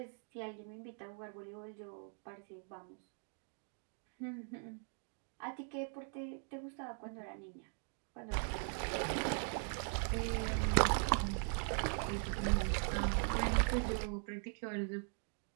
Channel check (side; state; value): left; silent; 51 dB below the other